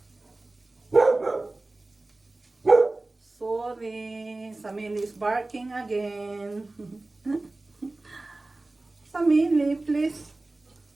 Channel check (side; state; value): left; quieter; 3.0 dB